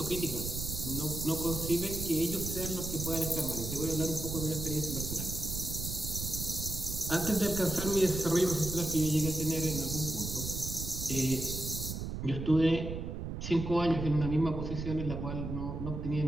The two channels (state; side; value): noise; right; rumble, 5 dB below the sound